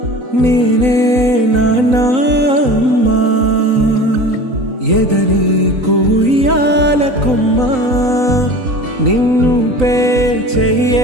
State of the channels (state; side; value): late; left; 3.9 ms